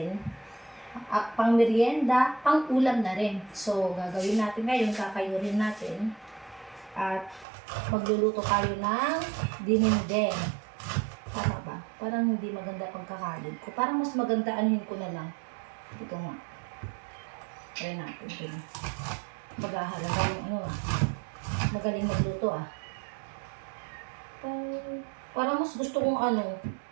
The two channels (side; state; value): left; drops out; at 7.5 s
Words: Pang merienda, pang ulam na rin. So, gagawin natin ngayon, kakayurin natin. At magluluto tayo ng dinengdeng. Tama ba? Parang hindi maganda pagkakalid ko. Parang mas maganda anuhin ko na lang. Ito nga. Try natin ito. Maghahalaga yung magaling magluto Parang mas gusto kong